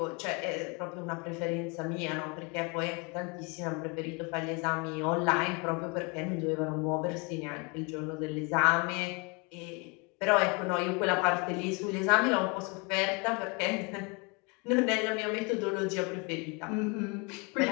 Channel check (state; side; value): quieter; right; 30.6 dB